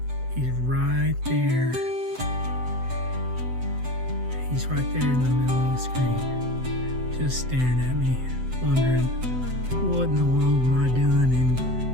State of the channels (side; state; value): left; late; 7.9 ms